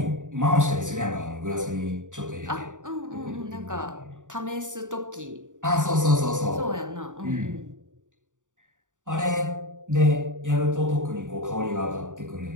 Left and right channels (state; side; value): late; left; 0.86 ms